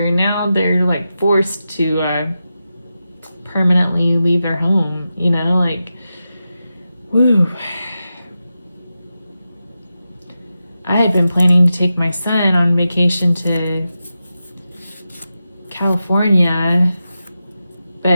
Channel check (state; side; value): inverted; both; correlation -0.91